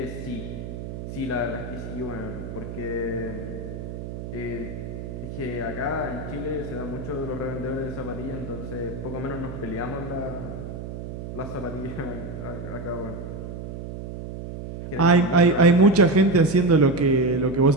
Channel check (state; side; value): noise; right; hum, 8 dB below the sound